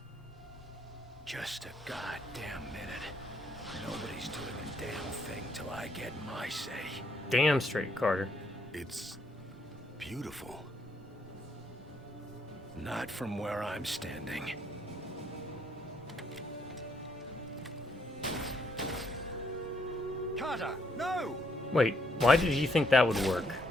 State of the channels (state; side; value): normal; both; correlation 0.73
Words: Just a goddamn minute. Nobody's doing a damn thing till I get my say. Damn straight, Carter. It's beautiful. Not from where I'm standing. Carter, no! Wait, why did he think that would work?